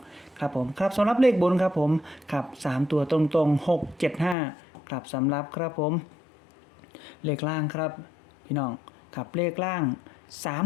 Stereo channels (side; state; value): right; drops out; at 4.4 s